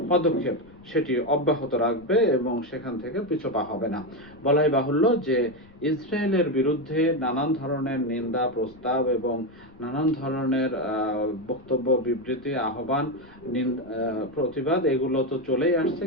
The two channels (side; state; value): left; noise; rumble, 25 dB below the sound